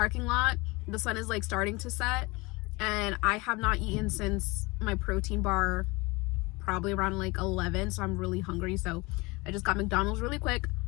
lot. The sun is like starting to set and I have not eaten since my protein bar, probably around like 11. So I'm really hungry. So I just got McDonald's really quick.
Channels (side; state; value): right; quieter; 24.5 dB